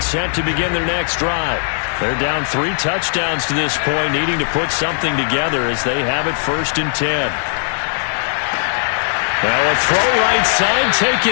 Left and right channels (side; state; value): right; silent; digital silence